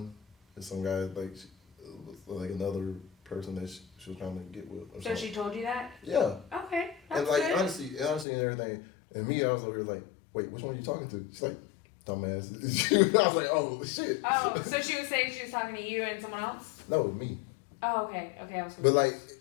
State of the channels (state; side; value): drops out; right; at 8.2 s